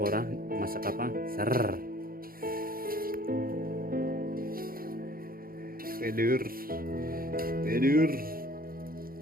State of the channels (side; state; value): left; late; 0.42 ms